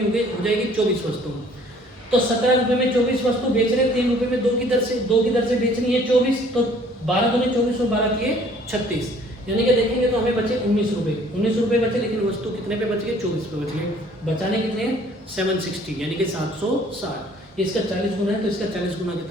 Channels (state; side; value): normal; both; correlation 0.56